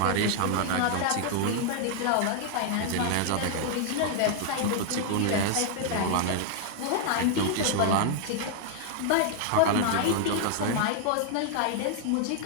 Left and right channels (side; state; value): both; different; correlation 0.00